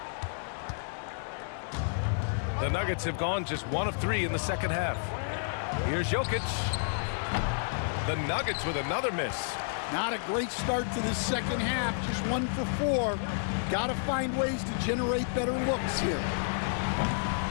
The Nuggets have gone just 1 of 3 in the second half. Here's Jokic. The Nuggets with another miss. Not a great start to this second half. Just 1 for 4. Got to find ways to generate better looks here.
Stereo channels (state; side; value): silent; right; digital silence